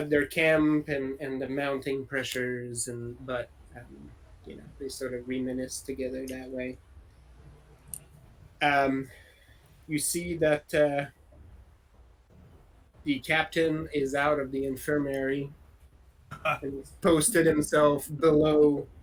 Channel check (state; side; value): identical; both; correlation 1.00